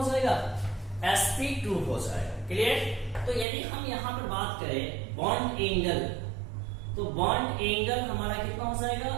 जाएगा? sp2 हो जाएगा। क्लियर? तो यदि हम यहाँ पर बात करें बॉन्ड एंगल, तो बॉन्ड एंगल हमारा कितना हो जाएगा?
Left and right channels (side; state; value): left; drops out; at 3.5 s